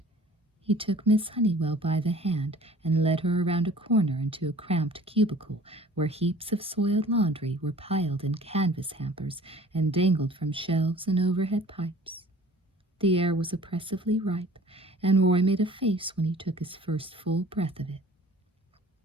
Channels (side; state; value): both; normal; correlation 0.48